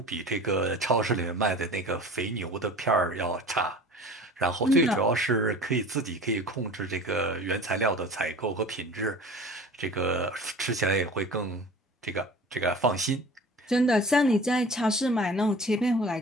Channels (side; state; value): both; normal; correlation 0.41